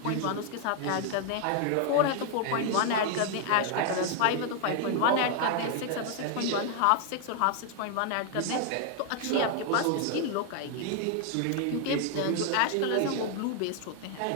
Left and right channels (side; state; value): both; different; correlation 0.00